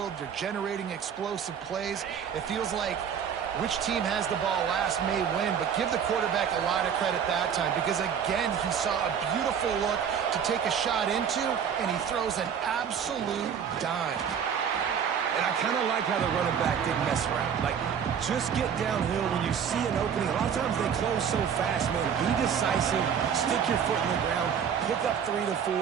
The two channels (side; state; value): left; quieter; 7.8 dB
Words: They're generating explosive plays. It feels like which team has the ball last may win, but give the quarterback a lot of credit that time because, again, he saw a beautiful look to take a shot into, and he throws an absolute dime. And I kind of like how the running back didn't mess around. Like, just get downhill when you see an opening. A lot of times they close so fast, man. Be decisive, stick your foot in the ground, pick up 3 to 4,